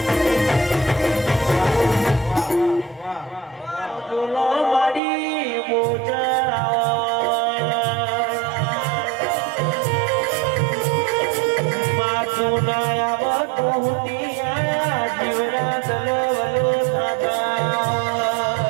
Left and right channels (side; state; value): left; drops out; at 5.0 s